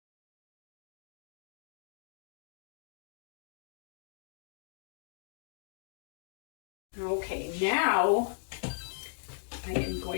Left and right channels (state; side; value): silent; right; digital silence